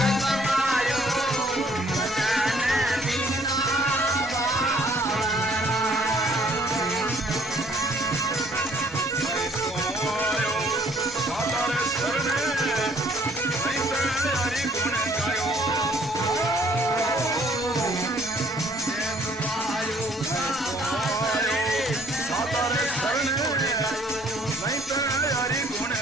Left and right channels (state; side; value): normal; both; correlation 0.61